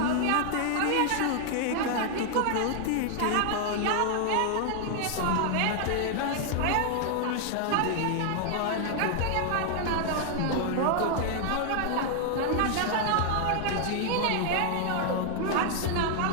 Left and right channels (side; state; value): both; different; correlation 0.00